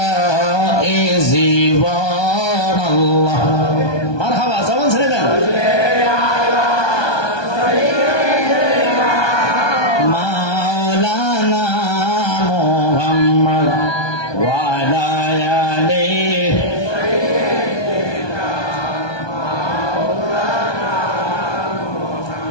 এ জীবন। আল্লাহ মারহাবা, জবান ছেড়ে দেন। মাওলানা মুহাম্মদ ওয়া আলা আলিহি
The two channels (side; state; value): right; late; 1.2 ms